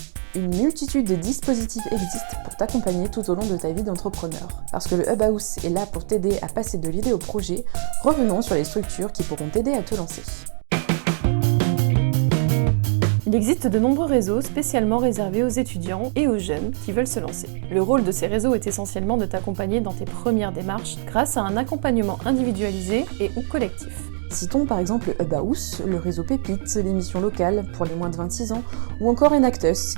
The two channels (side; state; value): left; silent; digital silence